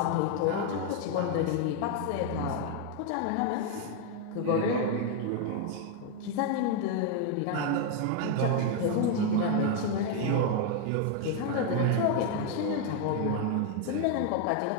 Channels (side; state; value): both; different; correlation 0.01